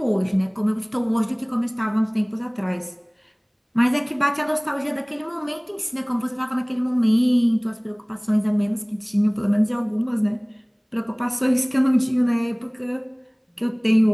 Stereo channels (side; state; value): both; identical; correlation 1.00